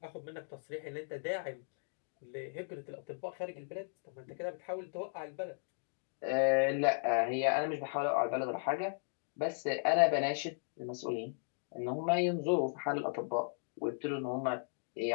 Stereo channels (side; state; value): right; silent; digital silence